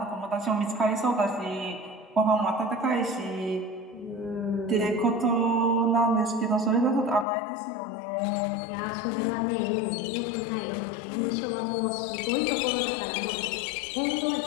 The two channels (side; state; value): right; drops out; at 7.2 s